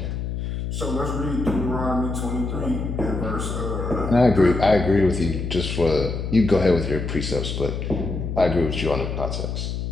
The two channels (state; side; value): noise; left; hum, 4 dB below the sound